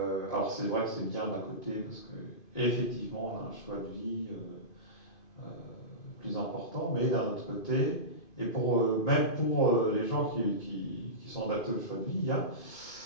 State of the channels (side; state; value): right; late; 2.5 ms